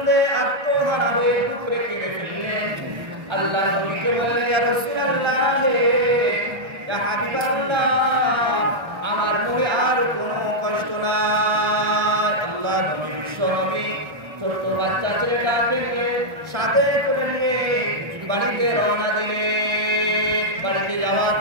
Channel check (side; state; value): left; late; 1.3 ms